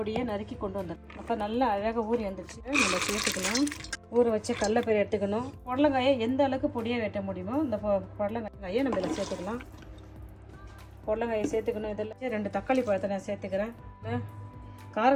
நறுக்கி கொண்டு வந்துடலாம். அப்போ நல்லா அழகாக ஊறி வந்துடுச்சு. நம்ம சேர்த்துக்கலாம். ஊற வச்ச கடலைப்பயிறு எடுத்துக்கணும். பொடலங்காயை எந்த அளவுக்கு பொடியாக வெட்ட முடியுமோ இந்த பொடலங்காயை நம்ம இதில் சேர்த்துக்கலாம். பொடலங்காயை சேர்த்துக்கணும். இதில் 2 தக்காளி பழத்தை நான் சேர்த்துக்கிறேன்.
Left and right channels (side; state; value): both; identical; correlation 1.00